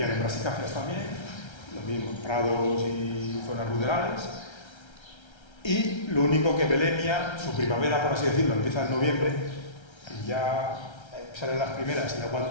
en brassicáceas también, lo mismo, prados y zonas ruderales. Y lo único que Belemnia, su primavera, por así decirlo, empieza en noviembre, y ya salen las primeras y la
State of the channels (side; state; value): right; late; 1.3 ms